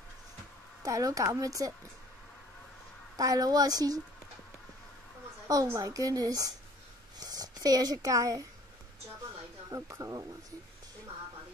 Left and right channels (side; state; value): both; normal; correlation 0.54